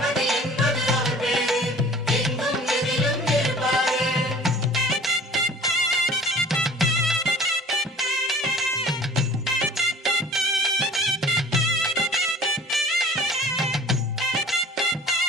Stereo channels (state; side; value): normal; both; correlation 0.47